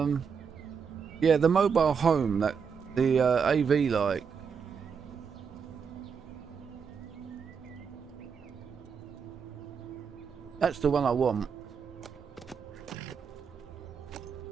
the mobile home that the AV like. That's the one I want.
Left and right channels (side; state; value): left; quieter; 6.4 dB